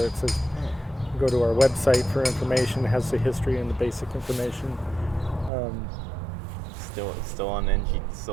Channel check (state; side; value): drops out; left; at 5.5 s